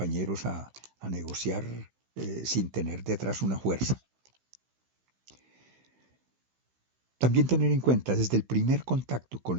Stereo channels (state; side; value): late; left; 16 ms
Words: a negociar sin tener detrás una fuerza. También tener en cuenta desde el primer contacto con